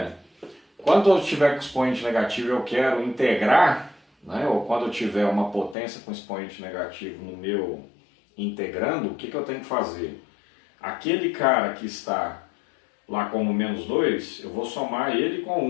quando eu tiver com expoente negativo eu quero integrar, né, ou quando eu tiver uma potência com expoente negativo no meu integrando, o que eu tenho que fazer? Aquele cara que está lá como menos 2, eu vou somar ele com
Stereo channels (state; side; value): drops out; right; at 5.8 s